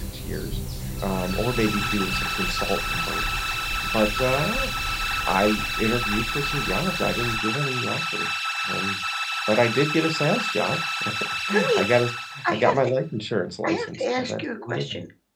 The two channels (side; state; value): both; identical; correlation 1.00